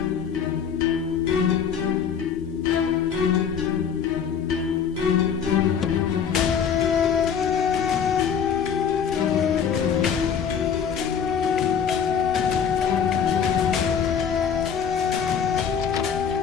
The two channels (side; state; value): right; quieter; 7.4 dB